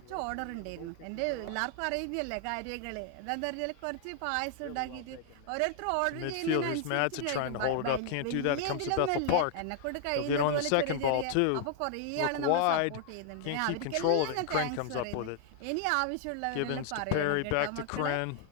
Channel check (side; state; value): both; different; correlation 0.00